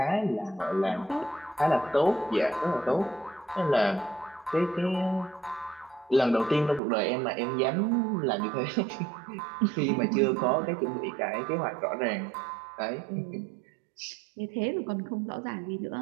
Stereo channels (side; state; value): left; drops out; at 6.8 s